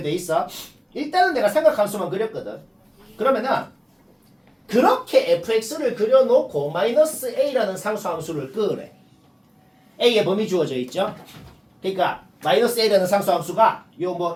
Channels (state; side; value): identical; both; correlation 1.00